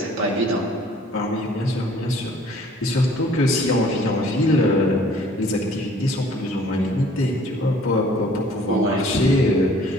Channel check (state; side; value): normal; both; correlation 0.55